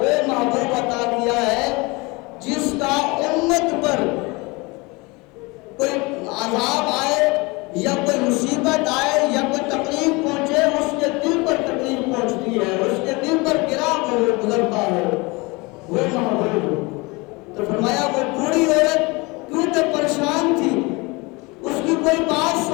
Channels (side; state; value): right; quieter; 25.6 dB